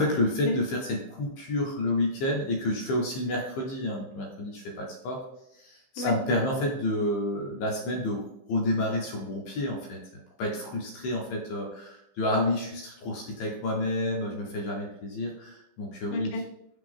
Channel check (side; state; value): right; late; 15 ms